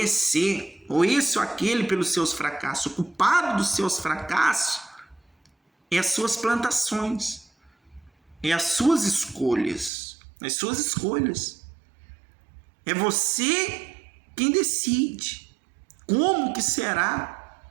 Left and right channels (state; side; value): drops out; left; at 9.9 s